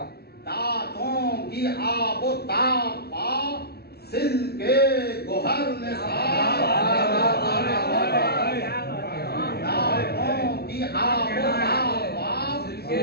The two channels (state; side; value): late; right; 0.46 ms